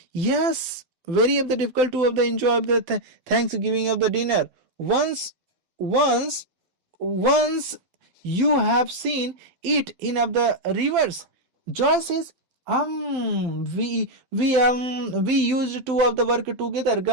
"Yes, very of the difficult to of the enjoy of the Thanksgiving of the dinner. Once, once you have seen it in of the rivers." Joy says, we used two of the work together."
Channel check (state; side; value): late; left; 12 ms